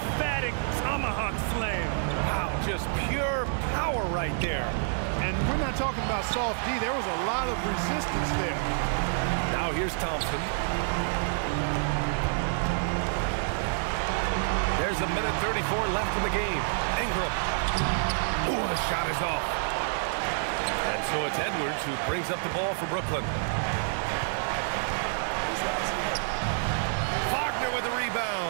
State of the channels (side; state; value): left; silent; 59 dB below the other